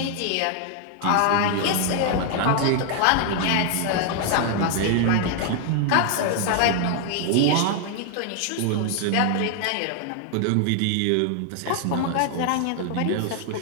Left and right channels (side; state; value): both; different; correlation 0.00